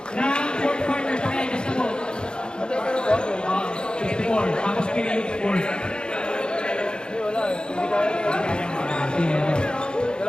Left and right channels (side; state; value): right; late; 0.050 ms